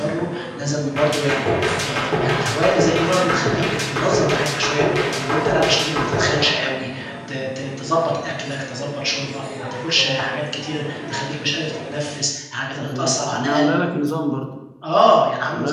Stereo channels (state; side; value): identical; both; correlation 1.00